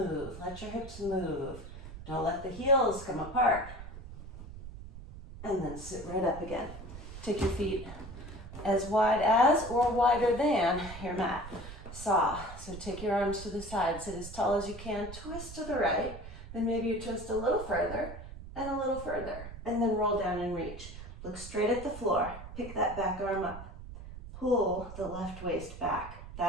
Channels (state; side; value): noise; right; rumble, 13 dB below the sound